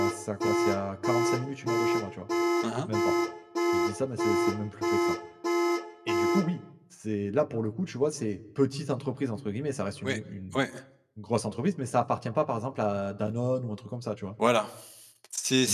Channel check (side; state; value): both; identical; correlation 1.00